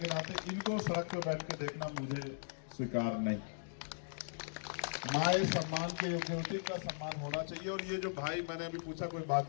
नाते, इनको सड़क पर बैठ के देखना मुझे स्वीकार नहीं। माए सम्मान के योग्य होती, का सम्मान होना चाहिए। और ये जो भाई, मैंने अभी पूछा, कोई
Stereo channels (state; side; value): silent; right; digital silence